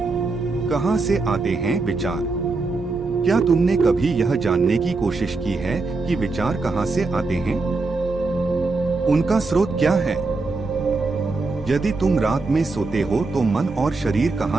कहां से आते हैं विचार? क्या तुमने कभी यह जानने की कोशिश की है कि विचार कहां से आते हैं? उनका स्रोत क्या है? यदि तुम रात में सोते हो तो मन और शरीर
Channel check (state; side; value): quieter; left; 3.7 dB